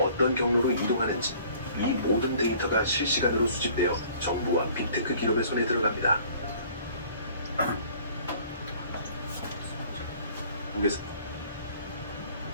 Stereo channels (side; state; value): both; inverted; correlation -0.53